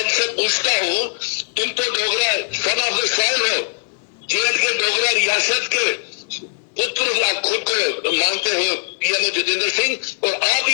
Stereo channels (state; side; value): silent; right; digital silence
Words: इनसे पूछता हूं, तुम तो Dogra son of the soil हो, जेएंड के डोगरा रियासत के पुत्र खुद को मानते हो पीएमओ जितेंद्र सिंह, और आप